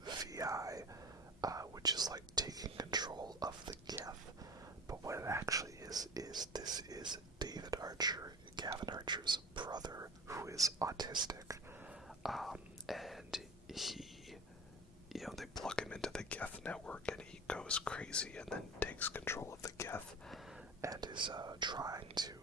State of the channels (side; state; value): both; normal; correlation 0.34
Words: VI, which is like taking control of the Geth. But what it actually is this is David Archer, Gavin Archer's brother, who is autistic. And he, they plug him into the Geth network and he goes crazy and then takes control of the Geth and is trying to